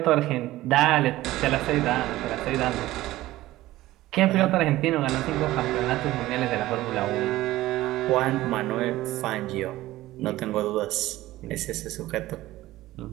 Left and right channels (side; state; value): left; quieter; 16.4 dB